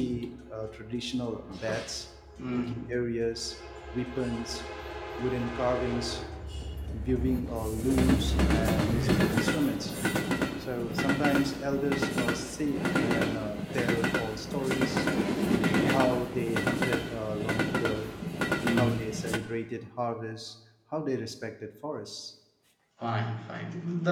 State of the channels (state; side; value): identical; both; correlation 1.00